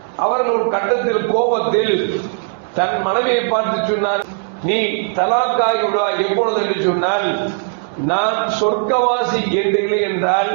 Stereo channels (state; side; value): silent; left; digital silence